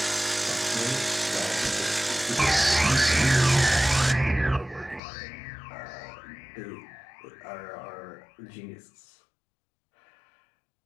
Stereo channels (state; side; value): drops out; right; at 5.0 s